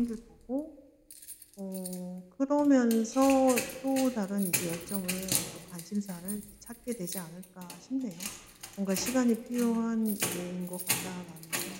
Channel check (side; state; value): both; identical; correlation 1.00